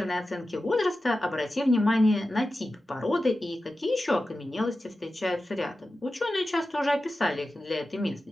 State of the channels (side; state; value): both; normal; correlation 0.93